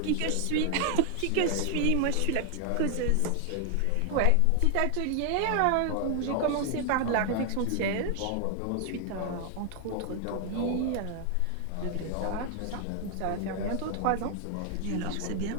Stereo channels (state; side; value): different; both; correlation 0.00